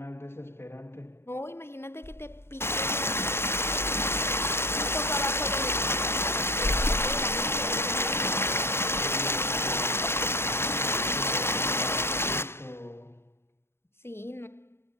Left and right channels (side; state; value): right; late; 0.12 ms